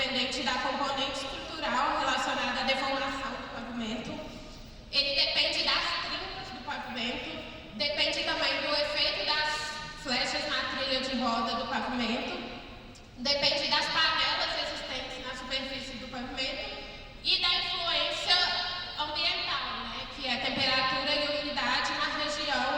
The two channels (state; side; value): identical; both; correlation 1.00